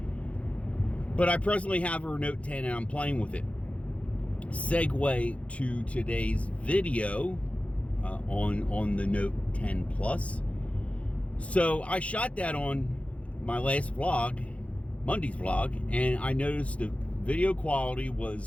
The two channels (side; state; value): right; late; 0.064 ms